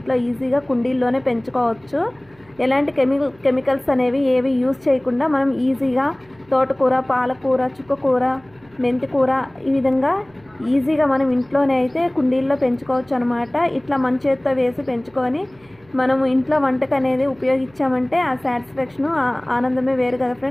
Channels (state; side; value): noise; right; hum, 30 dB below the sound